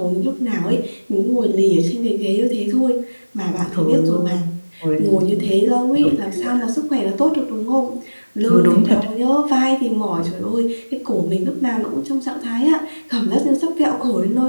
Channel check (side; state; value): both; inverted; correlation -1.00